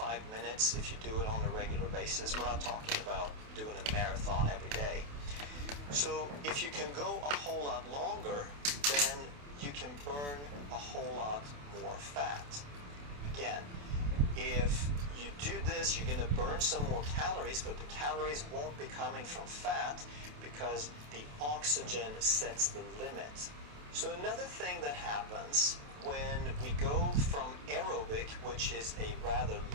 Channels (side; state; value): left; late; 28 ms